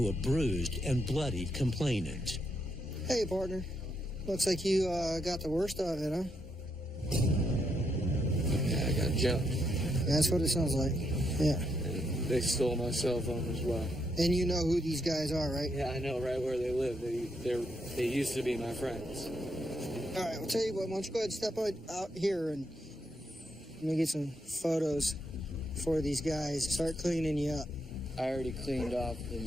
a bruised and bloodied complainant. Hey, partner. Looks like you got the worst of it, huh? Yeah, I got jumped. That's what it sounds like. Yeah. And they stole my cell phone as well. And you know who these guys are, right? Yeah, I know right where they live. They used to be my friends. All right, I'll tell you what. Why don't you go ahead and step out here and let me get some photos for these guys. Start cleaning you up. I already cleaned off the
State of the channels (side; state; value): both; normal; correlation 0.78